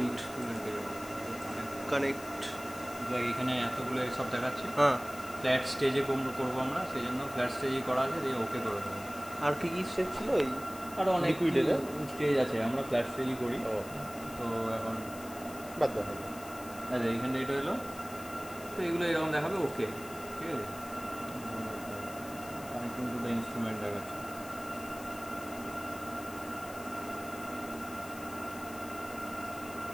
connect এখানে এতগুলো সব দেখাচ্ছে। হ্যাঁ, ফ্ল্যাট স্টেজে করবো আমরা, সেই জন্য ফ্ল্যাট স্টেজেই করা আছে, দিয়ে ওকে করে দেবো। আর কি কি স্টেজ ছিল? এই আরও অনেক স্টেজ আছে, আমরা ফ্ল্যাট স্টেজই করি। তো এখন বাদ দাও। আচ্ছা, এইখানটা এটা হলো, তো এগুলো এরকম দেখাবে ওকে, ঠিক আছে। কানেক্টিং টু দ্য ইনস্ট্রুমেন্ট দেখাচ্ছে।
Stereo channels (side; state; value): left; noise; hiss, 16 dB below the sound